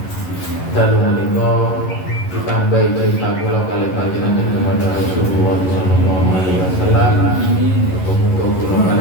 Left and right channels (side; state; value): right; late; 11 ms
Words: dalu menika ditambahi cerita kula kali panjenengan kepada Rasulullah sallallahu alaihi wasallam. Muga-muga kula